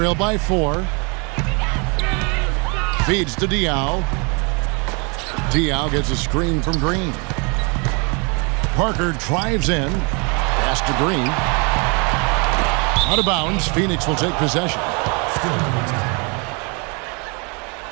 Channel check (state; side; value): quieter; left; 32.7 dB